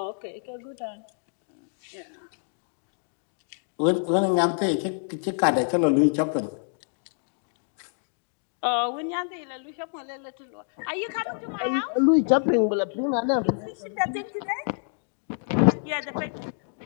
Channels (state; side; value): silent; right; digital silence